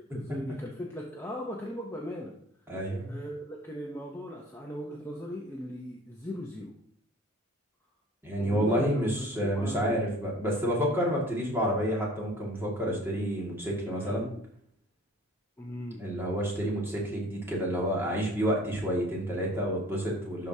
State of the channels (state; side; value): normal; both; correlation 0.48